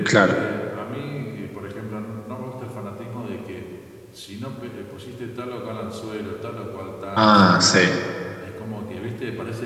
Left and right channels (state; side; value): identical; both; correlation 1.00